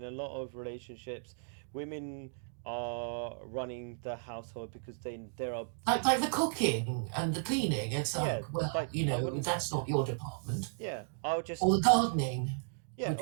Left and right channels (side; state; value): left; silent; digital silence